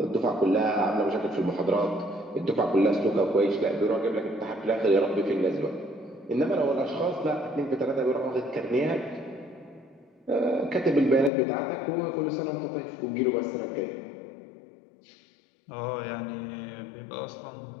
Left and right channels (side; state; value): right; drops out; at 11.3 s